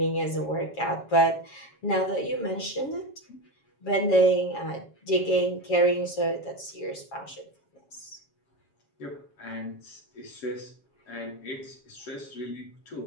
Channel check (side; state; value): right; late; 7.2 ms